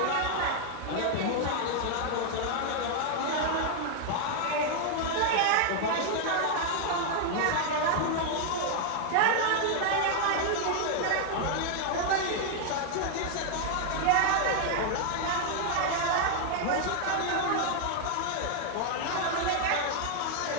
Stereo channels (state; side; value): different; both; correlation 0.00